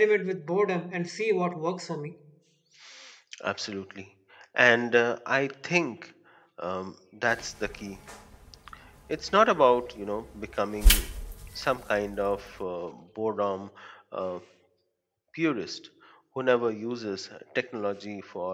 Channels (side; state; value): both; identical; correlation 1.00